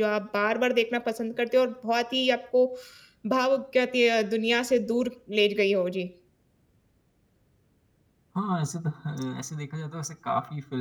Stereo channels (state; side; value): identical; both; correlation 1.00